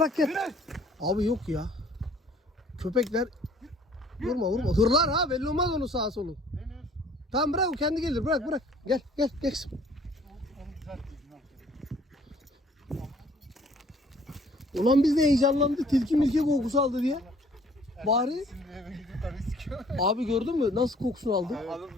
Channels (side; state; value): both; normal; correlation 0.56